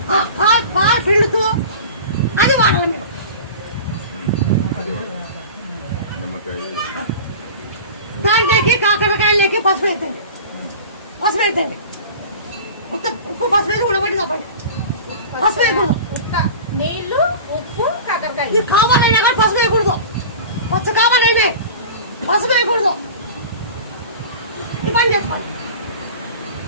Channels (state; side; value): inverted; both; correlation -0.35